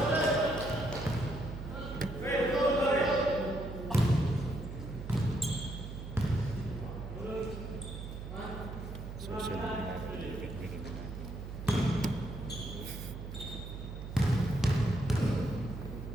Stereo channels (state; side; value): noise; right; hum, 9 dB below the sound